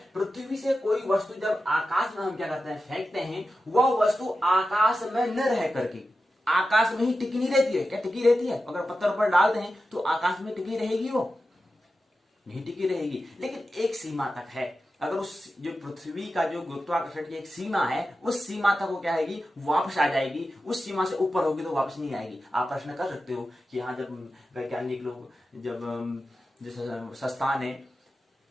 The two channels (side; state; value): both; normal; correlation 0.92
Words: पृथ्वी से कोई वस्तु जब आकाश में हम क्या करते हैं, फेंकते हैं, वह वस्तु आकाश में न रह करके आकाश में ही टिकी नहीं रहती है। क्या टिकी रहती है? अगर पत्थर पर डालते हैं तो आकाश में टिकी रहेगी? वो नहीं टिकी रहेगी, लेकिन एक सीमा तक है। अगर उस जो पृथ्वी का जो गुरुत्वाकर्षण की एक सीमा है, उस सीमा तक वो क्या आएगी, वापस आ जाएगी। उस सीमा से ऊपर होगी तो वापस नहीं आएगी। आप प्रश्न कर सकते हो कि हाँ, जब वैज्ञानिक लोग जब जैसे संस्थान है